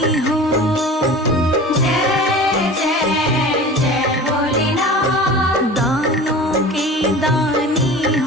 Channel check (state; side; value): normal; both; correlation 0.37